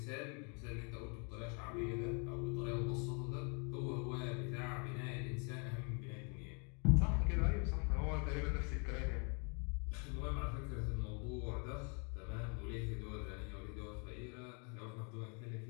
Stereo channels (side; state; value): right; quieter; 36.6 dB